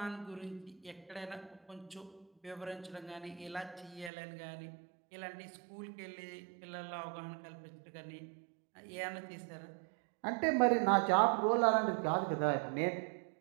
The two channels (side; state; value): left; drops out; at 4.1 s